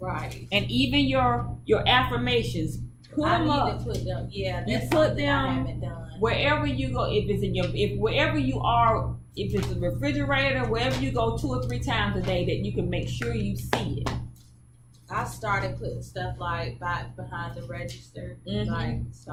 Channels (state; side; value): identical; both; correlation 1.00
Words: And even your affirmations, put I them need up. to put them. Yeah, You that's put something I them haven't done. wherever you go. If it's in wherever you are if it's a refrigerator, wherever you go 2 or 3 times a day, that you can make sure you see it. I started putting stuff like behind the register, like